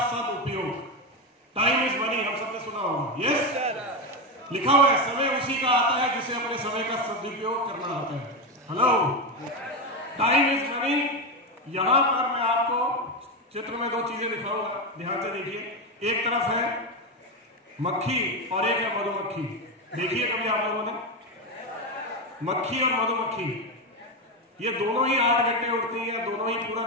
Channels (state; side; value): normal; both; correlation 0.13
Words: सदुपयोग। टाइम इज मनी, हम सबने सुना होगा। यस, लिखा हुआ है समय उसी का आता है जिसे अपने समय का सदुपयोग करना आता है। Hello, time is money. यहां पर मैं आपको चित्र में 2 चीजें दिखाऊंगा, ध्यान से देखिए। एक तरफ है मक्खी और एक है मधुमक्खी। देखिए कभी आप लोगों ने मक्खी और मधुमक्खी, ये दोनों ही 8 घंटे उड़ती हैं, दोनों ही